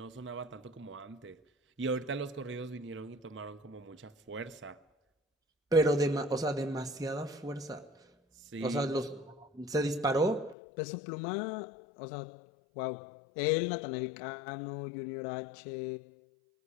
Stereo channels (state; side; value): drops out; right; at 10.6 s